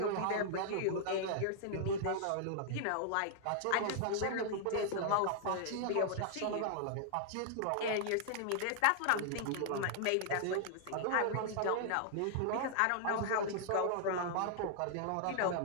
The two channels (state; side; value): different; both; correlation -0.01